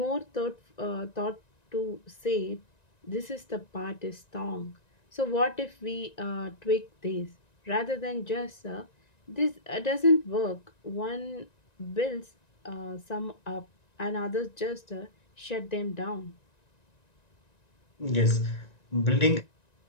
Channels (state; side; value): late; right; 1.9 ms